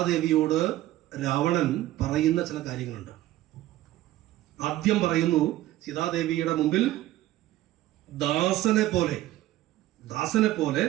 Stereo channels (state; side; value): quieter; left; 15.2 dB